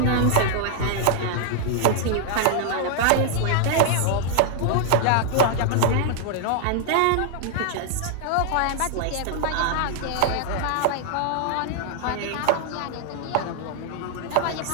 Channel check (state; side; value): different; both; correlation 0.00